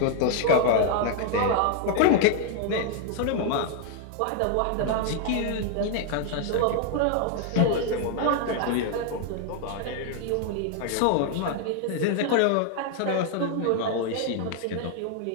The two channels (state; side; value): different; both; correlation 0.00